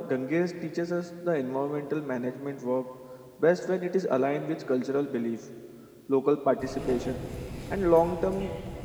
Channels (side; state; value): both; identical; correlation 1.00